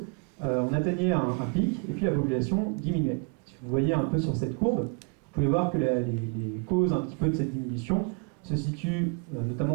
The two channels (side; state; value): left; quieter; 35.4 dB